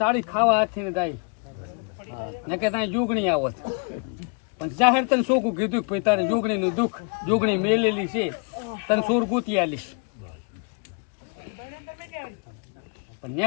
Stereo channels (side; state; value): right; quieter; 34.7 dB